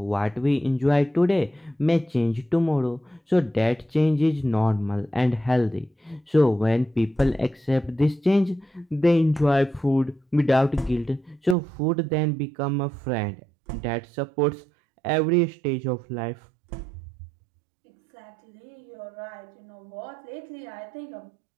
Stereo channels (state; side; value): drops out; left; at 11.6 s